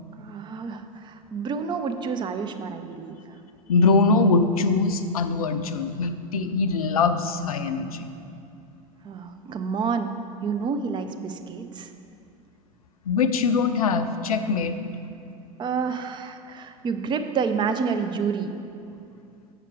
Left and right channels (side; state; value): both; normal; correlation -0.05